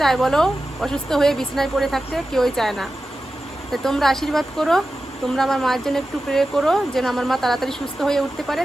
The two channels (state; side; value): normal; both; correlation 0.93